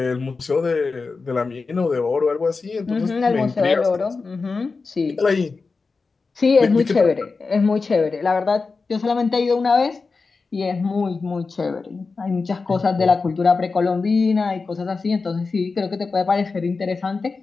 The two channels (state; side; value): quieter; right; 4.3 dB